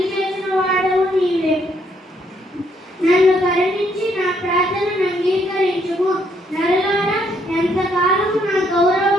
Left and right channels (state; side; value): normal; both; correlation 0.71